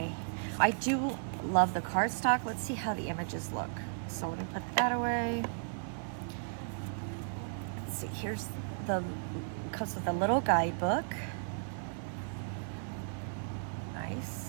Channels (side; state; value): left; silent; digital silence